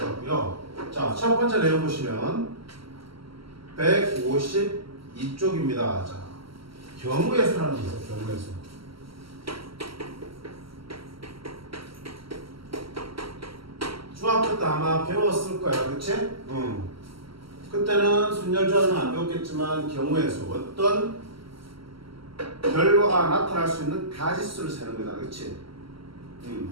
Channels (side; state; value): left; late; 0.75 ms